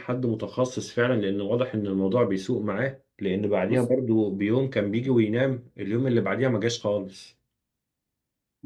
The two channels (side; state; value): both; identical; correlation 1.00